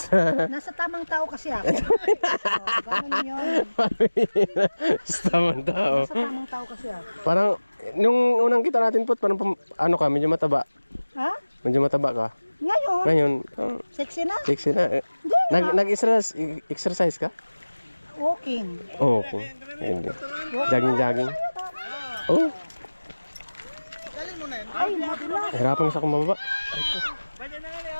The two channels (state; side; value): inverted; both; correlation -1.00